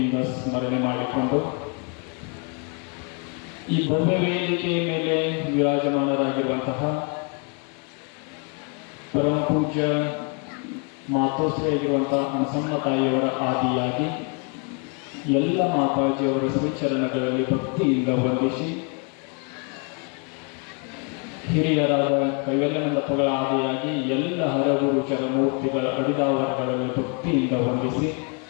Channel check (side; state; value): right; quieter; 35.9 dB